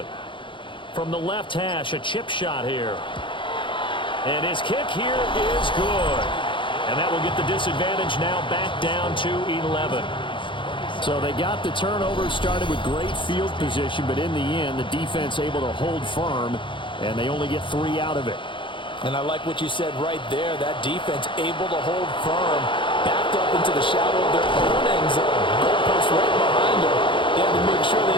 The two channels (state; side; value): late; right; 0.24 ms